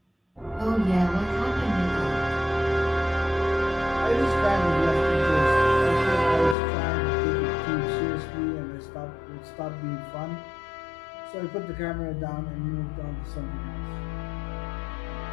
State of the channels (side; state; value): right; drops out; at 6.6 s